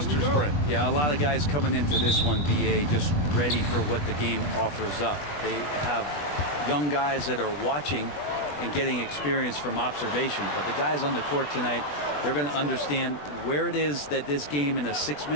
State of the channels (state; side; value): late; right; 20 ms